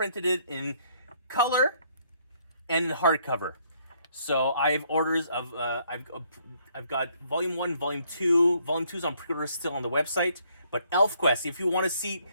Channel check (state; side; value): inverted; both; correlation -0.67